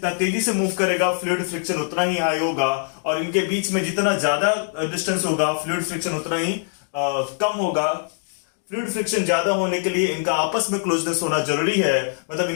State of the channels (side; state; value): right; silent; digital silence